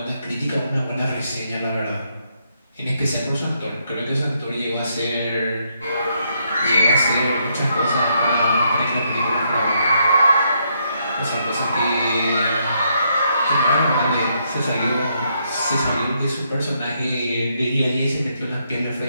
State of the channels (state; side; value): inverted; both; correlation -0.76